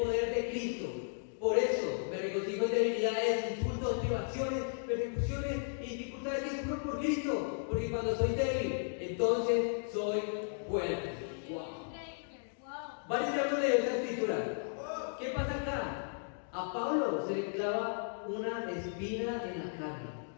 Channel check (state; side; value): silent; right; digital silence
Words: de Cristo. Por eso me regocijo en debilidades, insultos, privaciones, persecuciones y dificultades que sufro por Cristo, porque cuando soy débil, entonces soy fuerte. Wow. Varios ejemplos de esta escritura. ¿Qué pasa acá? A Pablo se le clava una espina en la carne,